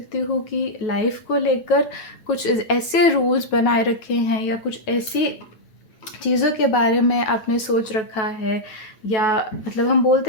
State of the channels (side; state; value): right; late; 9.3 ms